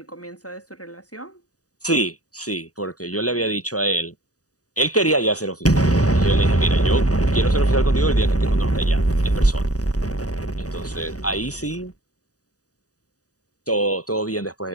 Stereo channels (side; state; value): right; late; 0.67 ms